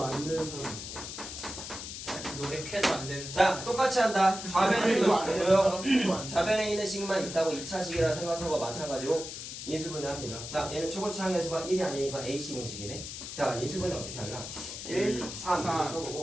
안 되는 사람. 노력해도 안 되는 자, 똑같이 한다. 좌변에 있는 안 되는 조용. 사람도 안 돼. 좌변에 있는 식만 있다고 2차식이라 생각하고 마찬가지로 인수분해합니다. 자, 얘는 초고차항에서가 1이 아니니까 AC 공식이네. 자, 인수분해 어떻게 할라? 1, 3 이렇게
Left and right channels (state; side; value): noise; left; hiss, 8 dB below the sound